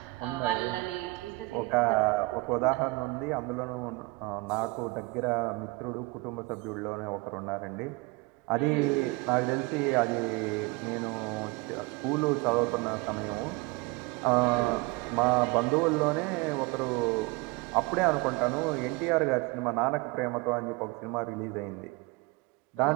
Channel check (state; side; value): quieter; left; 24.5 dB